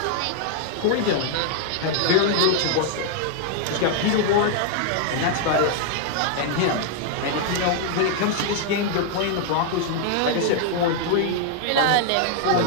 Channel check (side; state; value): both; different; correlation 0.00